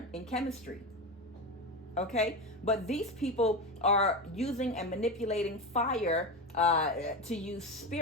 in chemistry, okay? But these people are using and manipulating fire to use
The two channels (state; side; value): normal; both; correlation 0.20